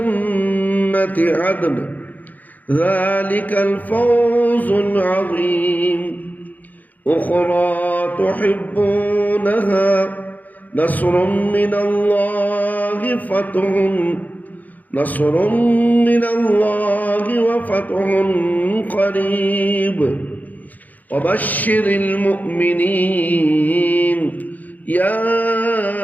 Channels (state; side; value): late; right; 0.081 ms